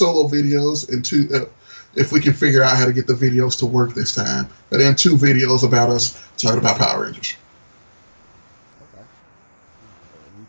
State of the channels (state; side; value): inverted; both; correlation -1.00